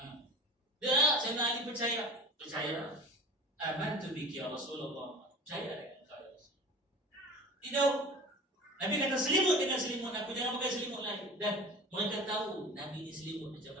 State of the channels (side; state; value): both; normal; correlation 0.37